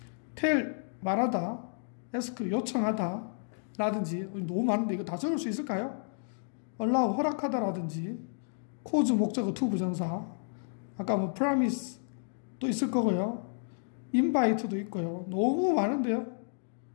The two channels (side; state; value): right; silent; digital silence